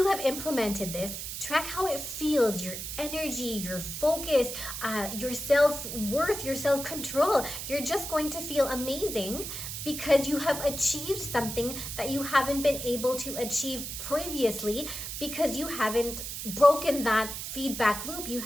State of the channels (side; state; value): right; noise; hiss, 6 dB below the sound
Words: have implemented this, track how it feels, your energy, your focus, your self-worth, your self-control. You're just going to feel amazing because you have achieved something that you haven't been able to achieve previously, because you haven't broken that feedback loop. You